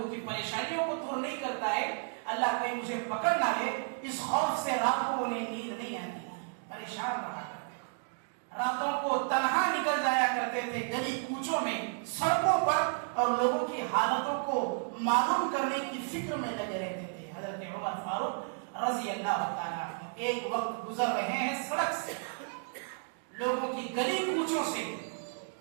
کی پریشانیوں کو دور نہیں کرتا ہے، اللہ کہیں مجھے پکڑ نہ لے. اس خوف سے رات کو انہیں نیند نہیں آتی، پریشان رہا کرتے، راتوں کو تنہا نکل جایا کرتے تھے گلی کوچوں میں، سڑکوں پر، اور لوگوں کی حالتوں کو معلوم کرنے کی فکر میں لگے رہتے تھے. حضرت عمر فاروق رضی اللہ تعالیٰ عنہ ایک وقت گزر رہے ہیں سڑک سے، لوگوں کی گلی کوچوں سے،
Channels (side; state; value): left; silent; 56 dB below the other